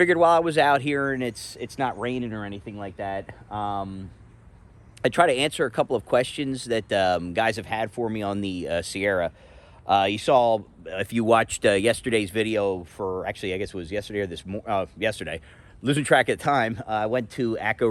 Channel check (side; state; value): both; identical; correlation 1.00